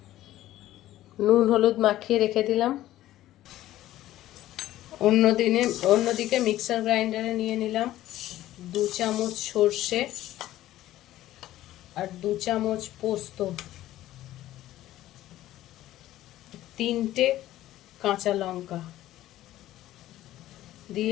নুন হলুদ মাখিয়ে রেখে দিলাম। অন্যদিকে মিক্সার গ্রাইন্ডারে নিয়ে নিলাম 2 চামচ সর্ষে আর 2 চামচ পোস্ত, 3টে কাঁচা লঙ্কা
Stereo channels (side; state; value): right; quieter; 14.4 dB